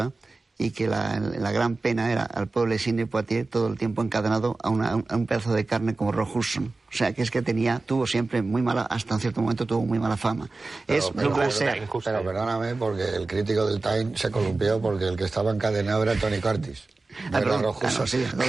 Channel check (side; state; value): left; quieter; 3.5 dB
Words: y que la gran pena era al pobre Sidney Poitier todo el tiempo encadenado a un pedazo de carne como Rock Hudson. O sea, que es que tuvo siempre muy mala, hasta un cierto momento tuvo muy mala fama. Pero perdóname, porque el crítico del Time se columpió porque el que estaba encadenado era Tony Curtis. Creí